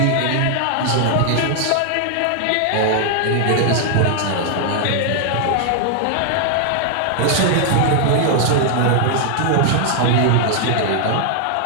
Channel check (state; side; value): different; both; correlation 0.00